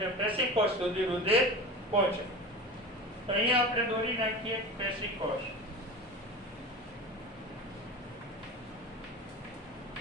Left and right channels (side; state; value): both; normal; correlation 0.32